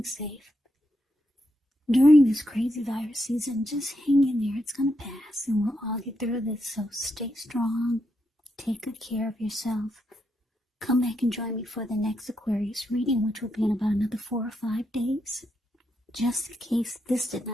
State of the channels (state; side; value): normal; both; correlation 0.82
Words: safe. During this crazy virus season, just hang in there. It's going to pass, and we'll all get through this. So stay strong. Take good care of yourself. Come back and join me for the next Aquarius reading, which will be in about another 4 or 5 days, just in case this did